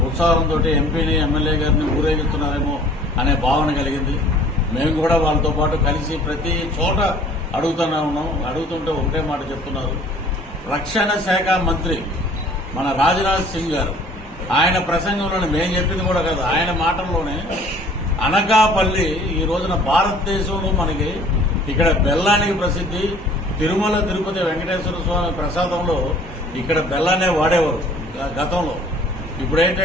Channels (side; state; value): both; normal; correlation 0.52